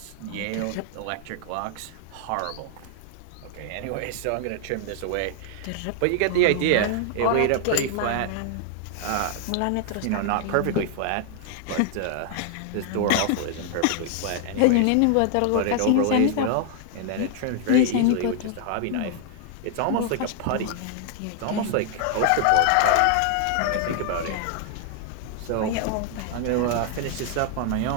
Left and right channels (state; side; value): different; both; correlation 0.00